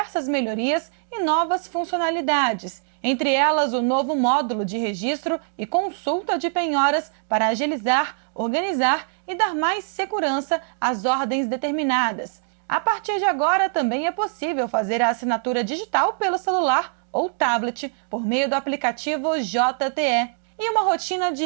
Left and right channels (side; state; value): left; silent; digital silence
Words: melhorias e novas funcionalidades, entre elas o novo módulo de registro e consulta de penhoras para agilizar, organizar e dar mais segurança às ordens determinadas. A partir de agora, também é possível fazer a assinatura digital pelo celular ou tablet por meio do aplicativo JTE. E uma rotina